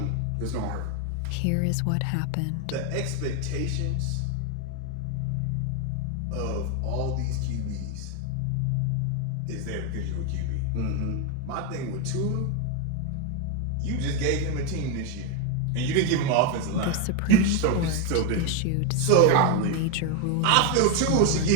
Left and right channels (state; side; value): different; both; correlation 0.01